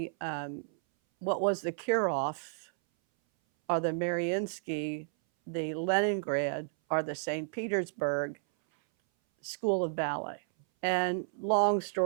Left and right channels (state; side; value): silent; left; 57 dB below the other